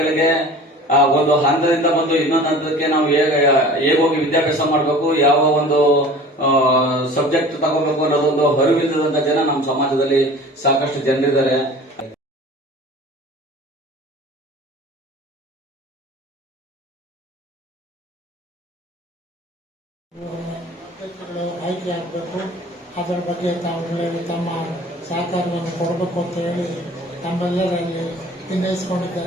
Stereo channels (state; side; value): normal; both; correlation 0.43